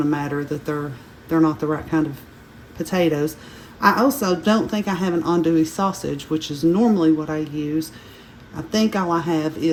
to matter that they're not the right kind of potatoes. I also don't think I have an andouille sausage, which is normally what I use. I think all I have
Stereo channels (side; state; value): both; identical; correlation 1.00